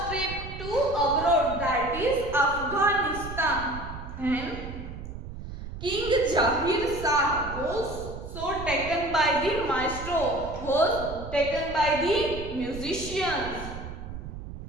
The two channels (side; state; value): right; noise; rumble, 10 dB below the sound